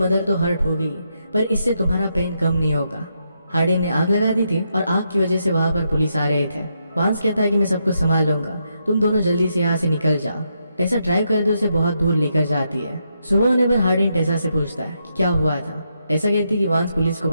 तो हर्ट होगी पर इससे तुम्हारा पेन कम नहीं होगा। हार्डिन ने आग लगा दी थी और आग की वजह से वहां पर पुलिस आ रहे थे। वांस कहता है कि मैं सब कुछ संभाल लूंगा, तुम दोनों जल्दी से यहाँ से निकल जाओ। टेसा ड्राइव कर दे उसे बहुत दूर लेकर जाती है। सुबह होने पर हार्डिन टेसा से पूछता है कि क्या हुआ था। टेसा कहती है कि वांस पुलिस को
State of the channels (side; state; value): both; inverted; correlation -0.81